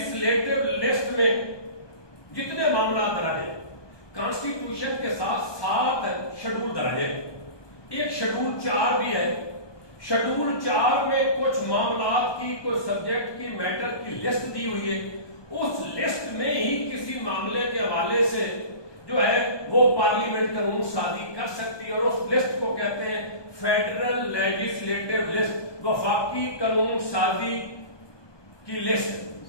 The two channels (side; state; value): right; late; 1.2 ms